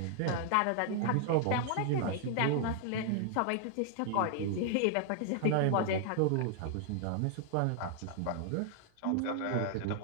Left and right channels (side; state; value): both; different; correlation 0.00